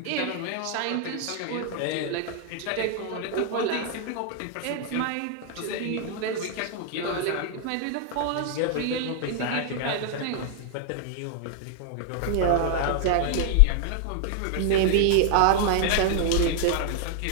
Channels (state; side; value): different; both; correlation 0.00